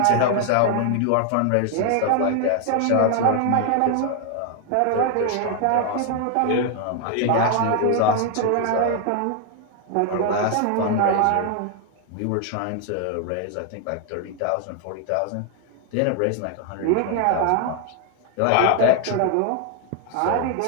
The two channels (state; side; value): different; both; correlation 0.00